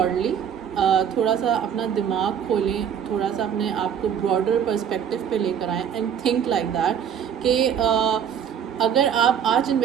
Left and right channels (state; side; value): quieter; left; 8.4 dB